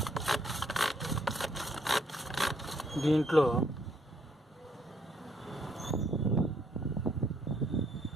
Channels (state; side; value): normal; both; correlation 0.70